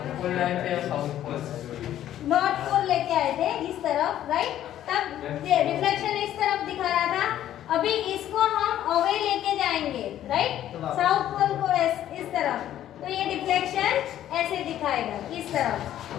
तरफ, राइट? तब रिफ्लेक्शन इस तरफ दिखा रहा था। अभी इसको हम अवे लेके जाएंगे, राइट? साउथ पोल को इस तरफ, तो ये डिफ्लेक्शन ऐसे दिखाएगा, इस तरफ।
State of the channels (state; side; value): quieter; right; 11.9 dB